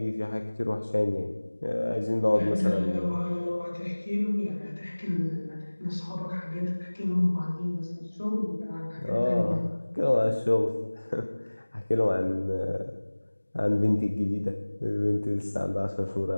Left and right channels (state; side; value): inverted; both; correlation -1.00